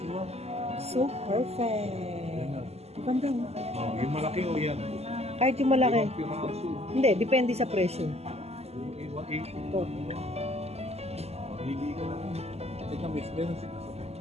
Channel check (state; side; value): late; left; 0.30 ms